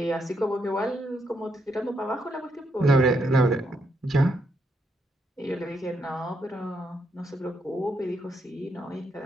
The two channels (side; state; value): both; normal; correlation 0.78